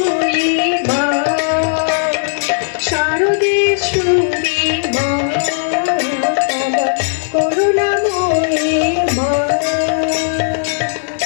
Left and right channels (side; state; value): right; silent; digital silence